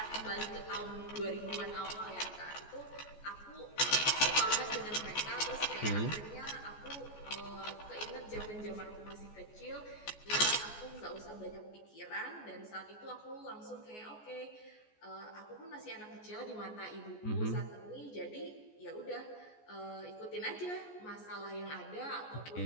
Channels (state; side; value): late; right; 14 ms